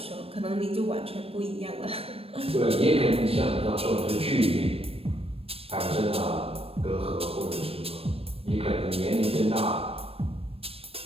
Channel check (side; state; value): left; late; 0.28 ms